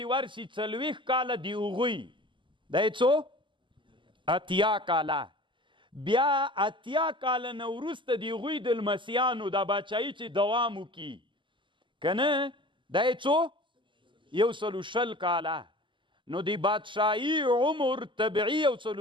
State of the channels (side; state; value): left; late; 0.24 ms